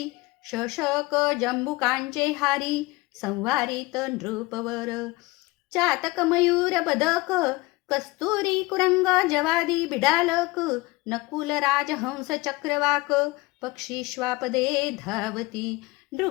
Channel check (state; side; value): quieter; right; 22.2 dB